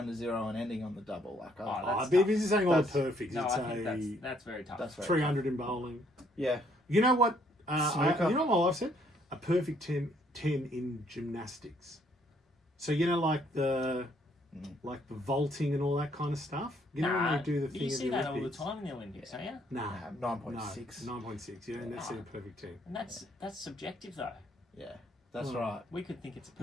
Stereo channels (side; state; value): both; normal; correlation 0.67